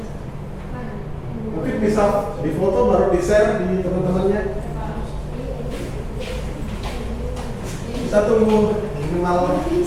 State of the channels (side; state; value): both; identical; correlation 1.00